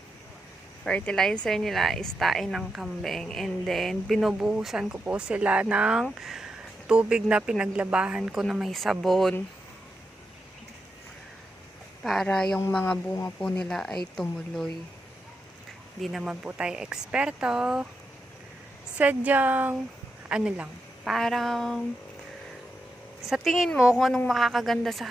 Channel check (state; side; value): normal; both; correlation 0.86